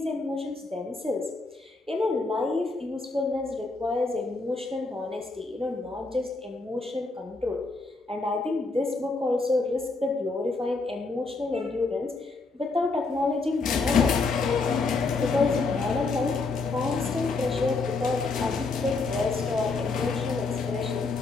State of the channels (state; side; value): quieter; right; 3.7 dB